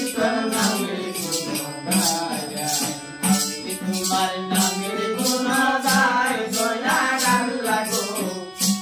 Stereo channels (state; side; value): identical; both; correlation 1.00